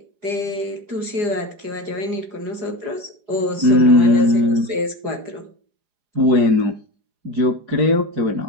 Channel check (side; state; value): left; late; 4.9 ms